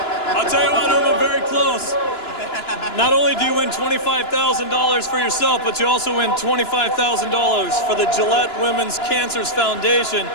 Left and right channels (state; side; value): late; right; 2.9 ms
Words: I'll tell you what, Uma, very close. Not only do you win $25,000 for yourself, but you also win $25,000 for the Gillette Women's Cancer Foundation.